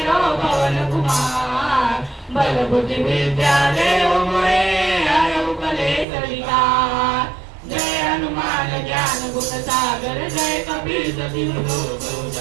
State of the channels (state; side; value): drops out; left; at 6.1 s